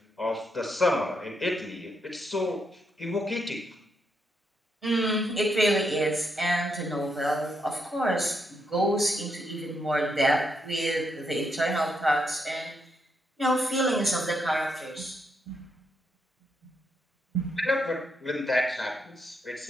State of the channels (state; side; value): normal; both; correlation 0.79